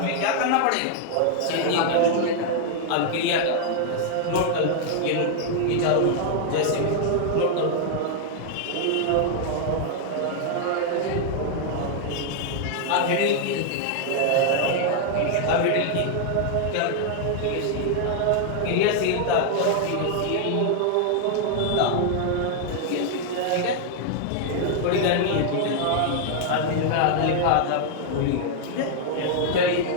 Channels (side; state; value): both; different; correlation 0.00